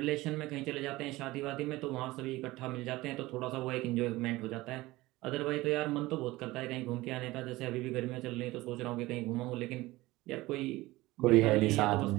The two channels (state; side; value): quieter; left; 19.2 dB